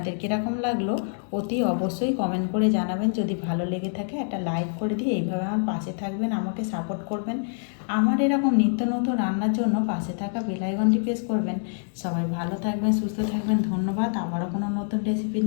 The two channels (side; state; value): right; silent; digital silence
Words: কীরকম লাগলো অতি অবশ্যই কমেন্ট করে জানাবেন। যদি ভালো লেগে থাকে একটা লাইক করে দিয়ে এইভাবে আমার পাশে থাকবেন, আমাকে সাপোর্ট করবেন। আমার এরকম নিত্য নতুন রান্নার জন্য পাশে থাকা বেল আইকনটি প্রেস করবেন। সবাই ভালো থাকবেন, সুস্থ থাকবেন, ধন্যবাদ। আবারও কোনো নতুন রেসিপি